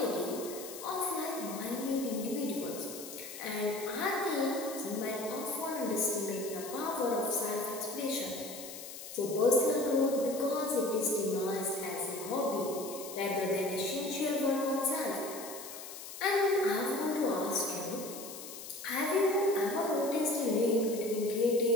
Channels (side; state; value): left; noise; hiss, 11 dB below the sound